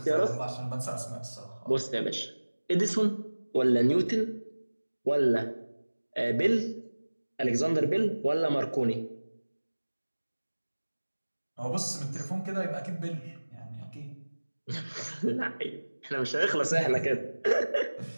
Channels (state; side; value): inverted; both; correlation -1.00